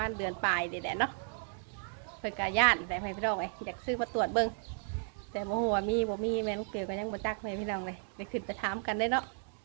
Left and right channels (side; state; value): left; silent; 55 dB below the other